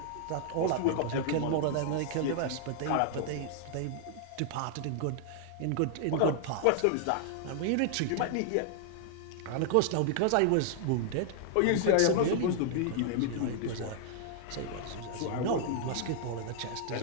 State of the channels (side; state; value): both; different; correlation -0.01